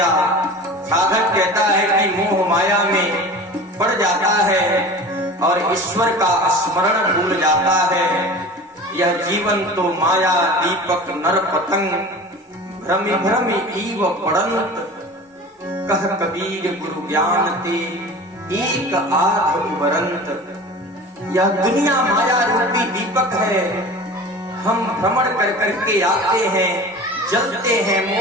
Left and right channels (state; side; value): normal; both; correlation 0.37